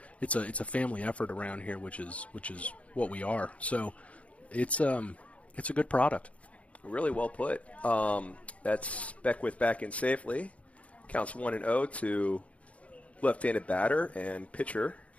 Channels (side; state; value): right; late; 0.065 ms